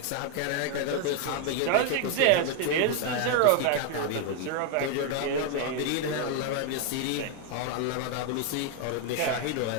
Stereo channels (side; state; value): both; different; correlation 0.01